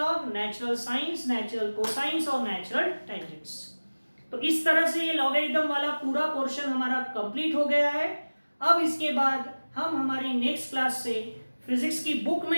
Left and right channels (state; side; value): inverted; both; correlation -1.00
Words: natural science, natural cosines और नेचुरल टेंजेंट्स। तो इस तरह से ये लॉगरिथम वाला पूरा पोर्शन हमारा कंप्लीट हो गया है। अब इसके बाद हम हमारी नेक्स्ट क्लास से फिजिक्स की बुक